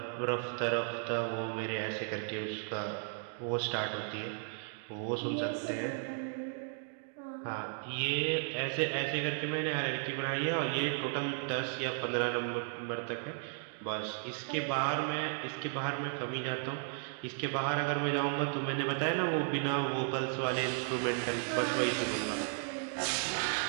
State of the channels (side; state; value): left; silent; 55 dB below the other